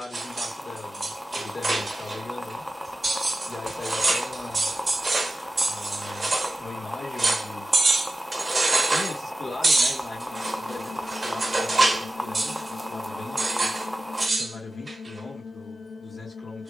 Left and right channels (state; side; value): normal; both; correlation 0.94